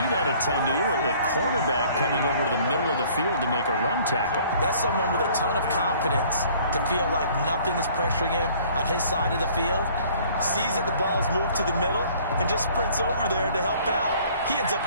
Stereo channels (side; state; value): both; inverted; correlation -0.55